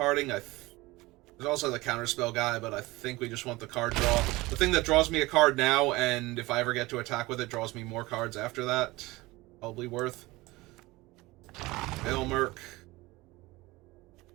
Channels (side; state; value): left; quieter; 20.8 dB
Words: there's also the Counterspell guy, but I think we just want the card draw. The thing that draws me a card now, and if I ever get to attack with it, draws me more cards after that. Probably worth. Elmerk.